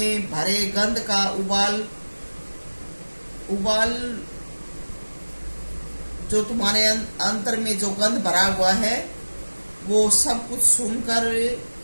भरे गंध का उबाल जो तुम्हारे अंतर में जो गंध भरा हुआ है वो सब कुछ सुनकर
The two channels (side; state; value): both; inverted; correlation -1.00